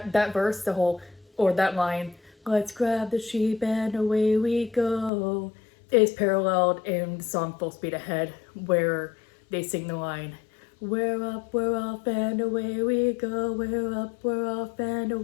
verse, the whole, or that line, let's grab the sheep and away we go, is paralleled in the song Full Speed Ahead, where they sing the line, we're up, we're off, and away we go, we're up, we're off, and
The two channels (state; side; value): drops out; right; at 5.1 s